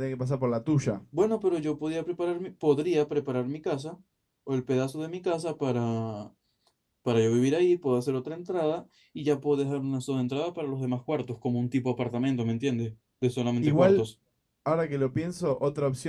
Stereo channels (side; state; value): both; identical; correlation 1.00